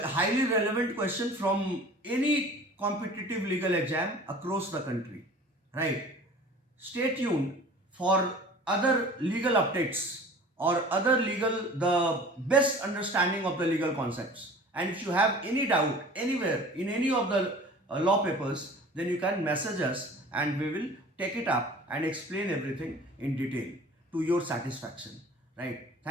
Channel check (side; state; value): both; normal; correlation 0.44